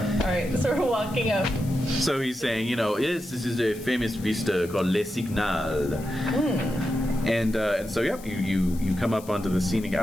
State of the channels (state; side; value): noise; left; hiss, 19 dB below the sound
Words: Alright, so we're walking up. So he's saying, yes, this is a famous vista called Le Signal. And so, yep, you come up onto the scenic